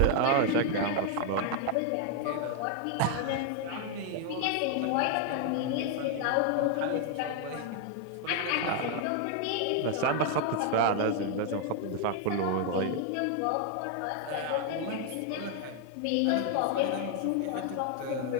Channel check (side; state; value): both; different; correlation 0.00